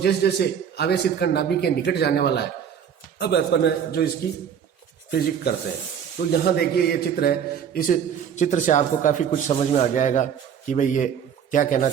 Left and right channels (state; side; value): quieter; left; 8.2 dB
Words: जैसे आवेशित कण नाभिक के निकट जाने वाला है, अब अपन जो इसकी फिजिक्स करते हैं। तो यहाँ देखिए ये चित्र है, इस चित्र से आपको काफी कुछ समझ में आ जाएगा कि भाई ये क्या कहना